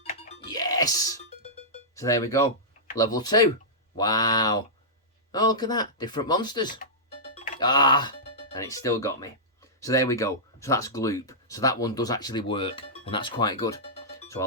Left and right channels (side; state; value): both; normal; correlation -0.12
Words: Yes. So there we go. Level 2. Wow. Oh, look at that. Different monsters. Ah. And it still got me. So there we go. So that's Gloop. So that one does actually work, and that's quite good. So I